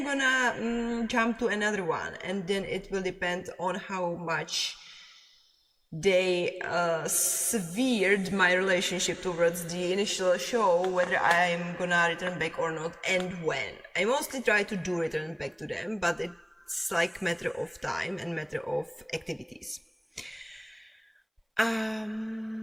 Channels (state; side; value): identical; both; correlation 1.00